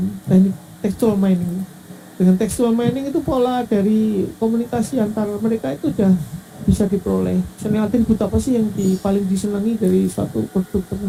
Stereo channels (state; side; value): identical; both; correlation 1.00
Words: teknik textual mining. Dengan textual mining itu pola dari komunikasi antar mereka itu sudah bisa diperoleh. Misalnya atribut apa sih yang paling disenangi dari suatu produk